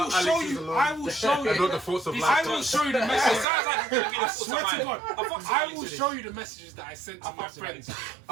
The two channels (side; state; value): left; drops out; at 3.5 s